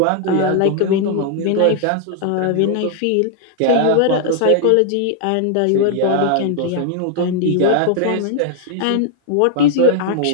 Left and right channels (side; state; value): both; different; correlation 0.00